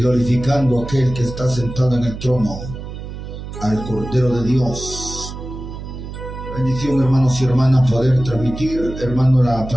a aquel que está sentado en el trono, al Cordero de Dios. Bendición, hermanos y hermanas, poder transmitir, hermano, la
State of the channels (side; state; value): right; noise; hum, 10 dB below the sound